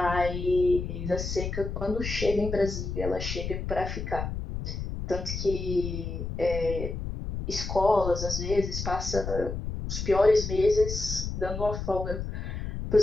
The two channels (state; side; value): noise; left; rumble, 5 dB below the sound